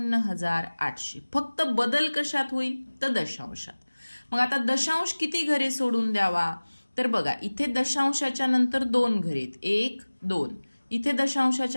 फक्त बदल कशात होईल? तर दशांशात. मग आता दशांश किती घरे सोडून द्यावा? तर बघा इथे दशांशाच्या नंतर 2 घरे आहेत, 1 2. इथे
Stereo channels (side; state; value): both; inverted; correlation -1.00